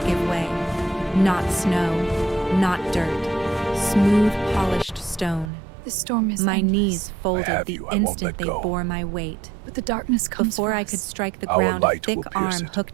give way. Not snow, not dirt. Smooth, polished stone. The storm is My endless, knees I folded have the you. I won't instant let they go. bore my weight. but the darkness comes Before for I us. could strike the Our ground, a light thick will pierce arm it,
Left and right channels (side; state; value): left; drops out; at 5.5 s